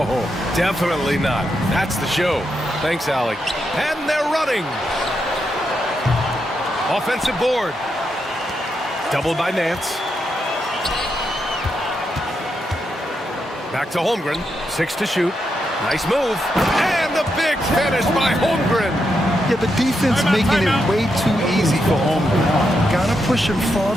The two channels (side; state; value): both; normal; correlation 0.83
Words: definitely not. That's the show. Thanks, Allie. And they're running. Offensive board. Doubled by Nance. Back to Holmgren. 6 to shoot. Nice move. And the big finish by Holmgren. Yeah, the defense making it way too easy for Holmgren. Gotta push him